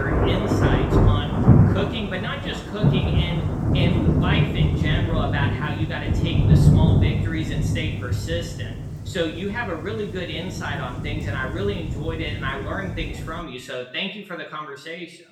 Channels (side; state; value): both; identical; correlation 1.00